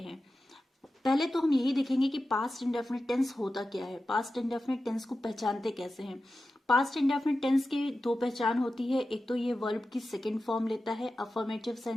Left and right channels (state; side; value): normal; both; correlation 0.93